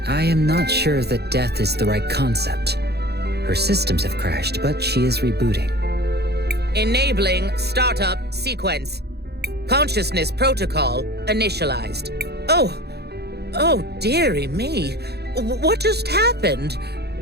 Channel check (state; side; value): late; left; 0.48 ms